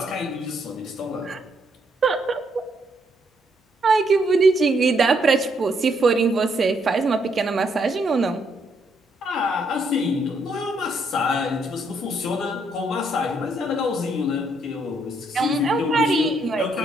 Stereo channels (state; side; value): normal; both; correlation 0.73